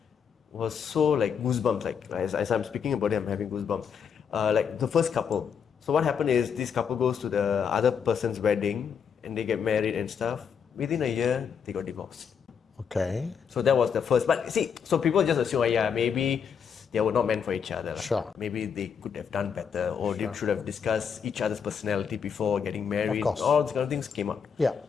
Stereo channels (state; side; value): quieter; right; 7.0 dB